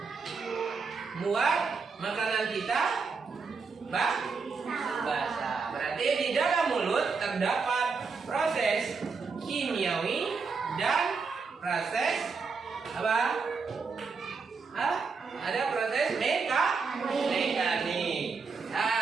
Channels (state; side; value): quieter; left; 4.9 dB